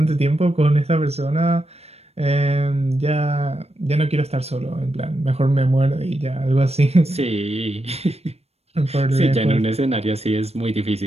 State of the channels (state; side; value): late; left; 0.30 ms